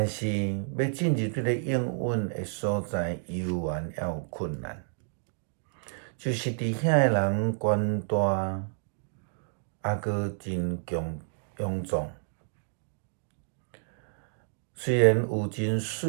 是要进入这个应允的所在，犹原还有困难，就是伫遐的人权大，还阁真臃肿。虽然有真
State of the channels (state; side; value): silent; left; digital silence